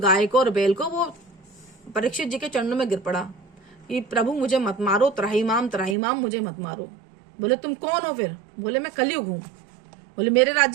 को और बैल को, वो परीक्षित जी के चरणों में गिर पड़ा कि प्रभु मुझे मत मारो, त्राहिमाम मुझे मत मारो। बोले तुम कौन हो फिर। बोले मैं कलयुग हूं। बोले मेरे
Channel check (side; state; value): left; drops out; at 6.0 s